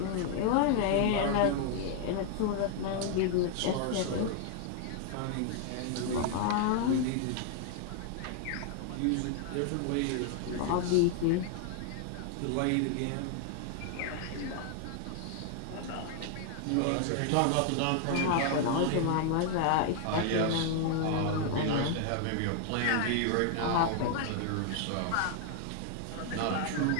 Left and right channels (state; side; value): different; both; correlation 0.00